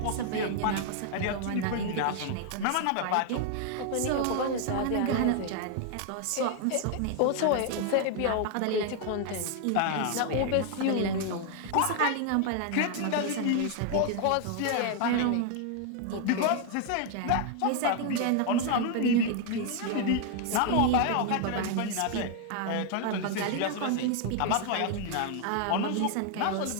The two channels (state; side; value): different; both; correlation 0.00